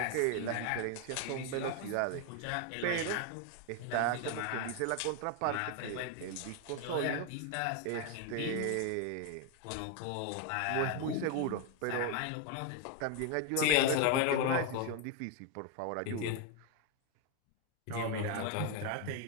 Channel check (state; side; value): different; both; correlation 0.01